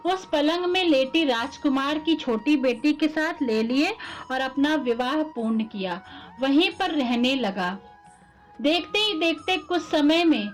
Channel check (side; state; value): both; identical; correlation 1.00